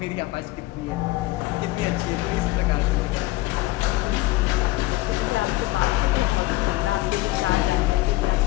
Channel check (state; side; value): quieter; right; 19.1 dB